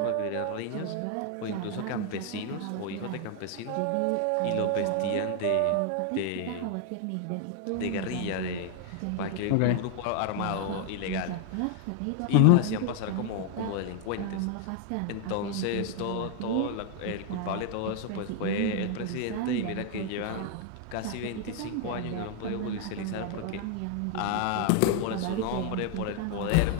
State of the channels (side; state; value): both; different; correlation 0.00